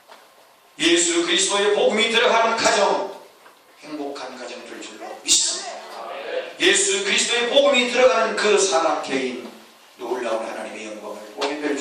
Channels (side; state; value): both; identical; correlation 1.00